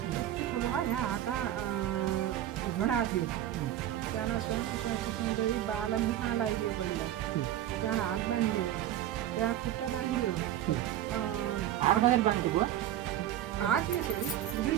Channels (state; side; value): quieter; left; 12.1 dB